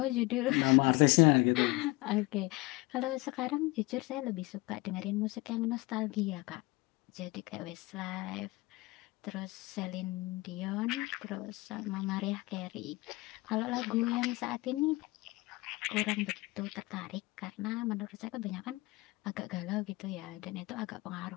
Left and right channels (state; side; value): quieter; right; 22.2 dB